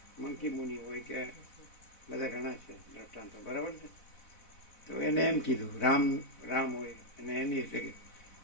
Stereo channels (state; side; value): late; right; 4.1 ms